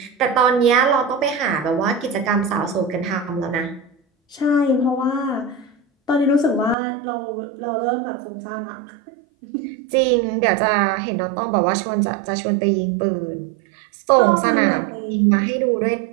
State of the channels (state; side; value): drops out; left; at 6.8 s